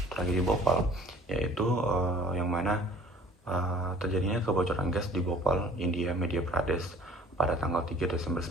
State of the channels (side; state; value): both; normal; correlation 0.51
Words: tragedi Bhopal, yaitu yang mana terjadinya kebocoran gas di Bhopal, India, Madhya Pradesh pada tanggal 3 Desember